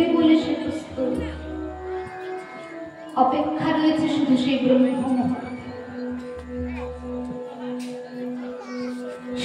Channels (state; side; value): identical; both; correlation 1.00